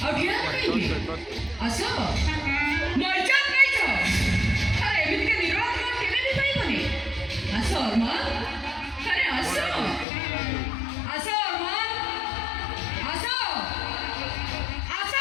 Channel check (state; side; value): drops out; right; at 10.1 s